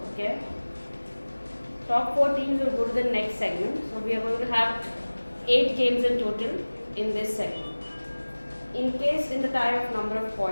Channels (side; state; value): both; inverted; correlation -1.00